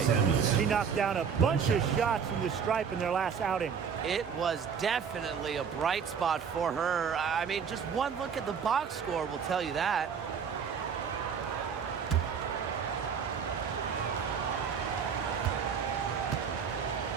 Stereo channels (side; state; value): left; quieter; 6.8 dB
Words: She knocked down a bunch of shots from the stripe in their last outing. It was definitely a bright spot for her. I mean, just one look at the box score will tell you that.